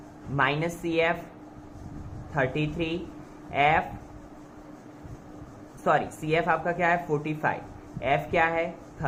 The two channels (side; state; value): both; identical; correlation 1.00